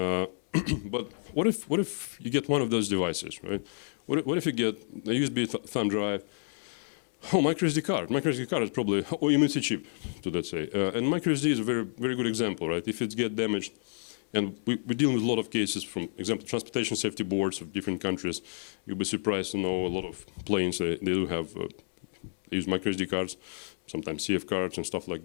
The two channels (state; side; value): silent; right; 58 dB below the other